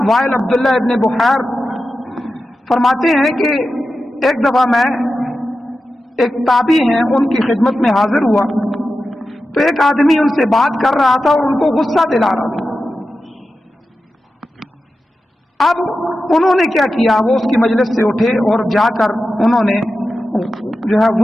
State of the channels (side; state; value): both; normal; correlation 0.92